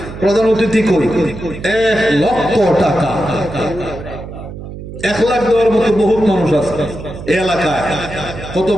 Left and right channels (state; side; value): noise; right; hum, 11 dB below the sound